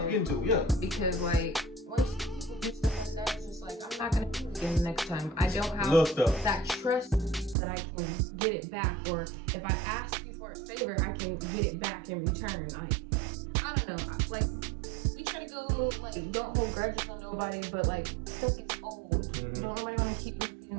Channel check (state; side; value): drops out; left; at 7.6 s